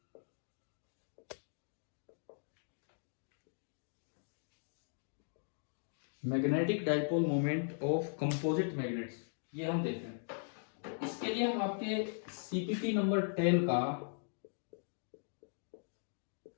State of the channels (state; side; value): silent; right; digital silence